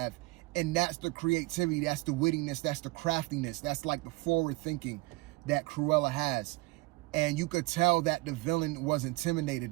and that's the creativity, that's the wittiness, that's the craftiness, that's like the forward thinking that Cruella has. And you could tell that the villain was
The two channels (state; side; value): quieter; left; 22.4 dB